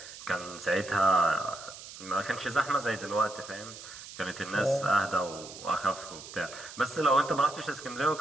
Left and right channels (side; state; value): right; noise; hiss, 14 dB below the sound